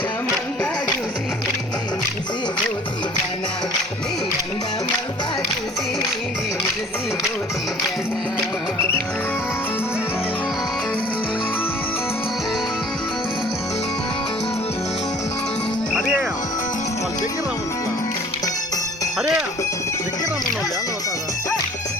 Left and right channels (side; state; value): both; normal; correlation 0.50